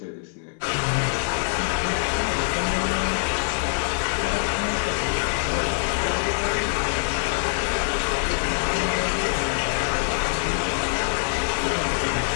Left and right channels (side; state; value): right; silent; digital silence